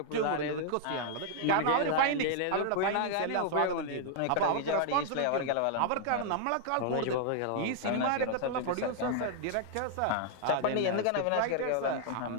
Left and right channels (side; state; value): both; different; correlation -0.01